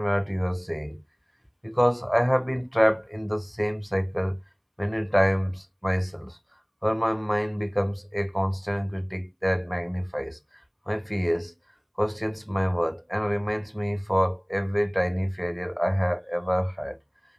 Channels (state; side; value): identical; both; correlation 1.00